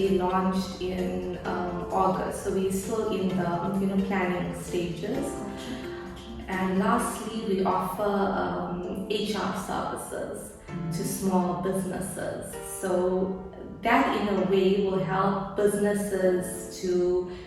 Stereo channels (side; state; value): both; identical; correlation 1.00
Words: launched in August. So we're still in the planning stages. And lastly, we offer HR services to small businesses. So that in a way will help businesses to